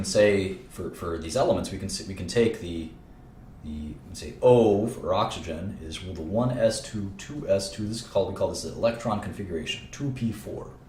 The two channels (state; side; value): identical; both; correlation 1.00